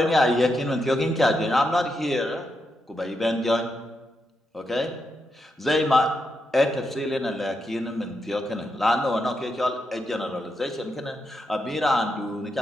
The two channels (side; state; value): both; normal; correlation 0.84